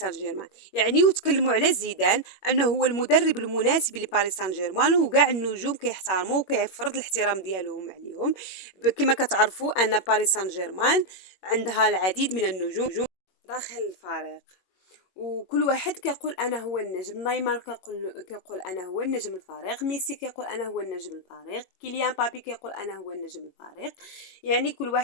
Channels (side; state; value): right; late; 21 ms